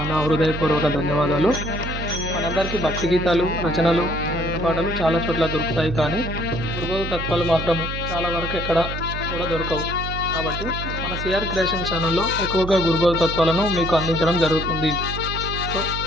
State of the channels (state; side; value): noise; right; hum, 6 dB below the sound